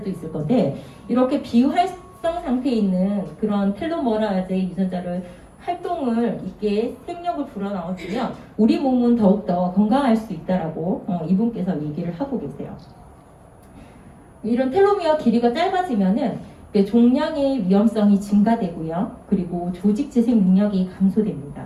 있을 건데 이렇게 비활성 상태에 있는 그런 텔로머라제 유전자를 활동을 있게 생력을 불어넣어주면 우리 몸은 더욱더 건강할 수 있다라고 이분께서 얘기를 하고 계세요. 이런 텔로미어 길이가 짧아지면은 종양의 위험성이 증가되고요. 그리고 조직 재생 능력이 감소됩니다.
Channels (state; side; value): identical; both; correlation 1.00